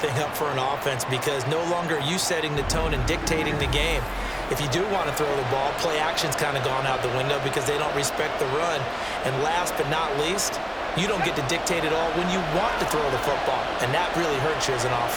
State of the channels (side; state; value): both; identical; correlation 1.00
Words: up for an offense, because no longer are you setting the tone and dictating the game. If you do want to throw the ball, play action's kind of gone out the window because they don't respect the run. And last but not least, you don't get to dictate it all when you want to throw the football, and that really hurts you as an